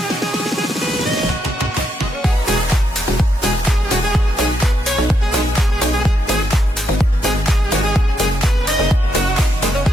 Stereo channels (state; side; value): normal; both; correlation 0.79